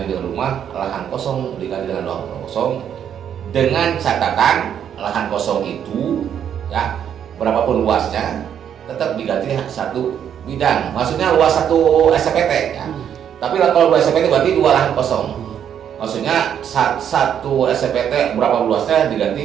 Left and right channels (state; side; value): quieter; left; 9.0 dB